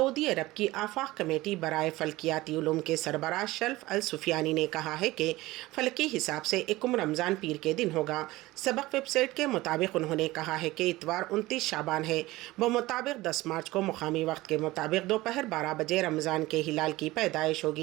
अरब की आफाक कमेटी बराए फल्कियाती उलूम के सरबराह शल्फ अल सुफियानी ने कहा है कि फलकी हिसाब से 1 रमज़ान पीर के दिन होगा। सबक वेबसाइट के मुताबिक उन्होंने कहा है कि इतवार 29 शाबान है। मुताबिक 10 मार्च को मुकामी वक्त के मुताबिक दोपहर 12 बजे रमज़ान के हिलाल की पैदाइश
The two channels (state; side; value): quieter; left; 18.8 dB